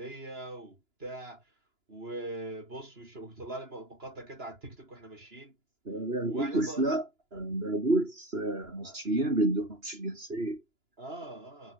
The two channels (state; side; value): late; left; 2.9 ms